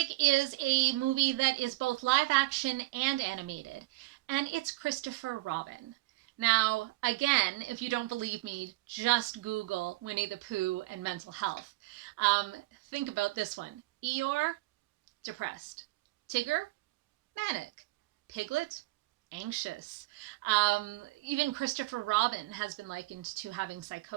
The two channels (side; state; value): left; quieter; 21.7 dB